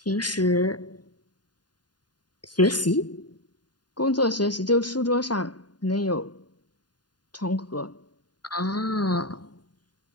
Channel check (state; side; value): late; right; 0.70 ms